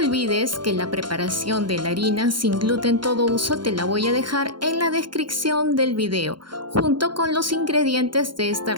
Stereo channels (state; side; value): late; left; 0.72 ms